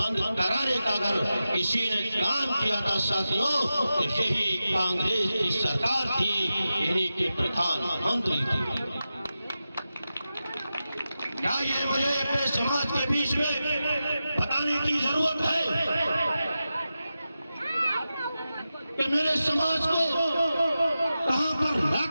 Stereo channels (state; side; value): inverted; both; correlation -0.92